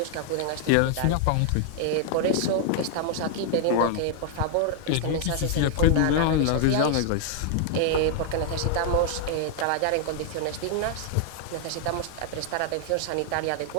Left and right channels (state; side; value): different; both; correlation 0.00